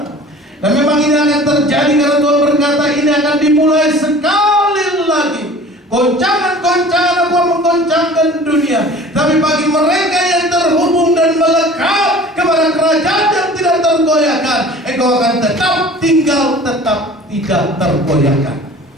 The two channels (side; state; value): both; normal; correlation 0.45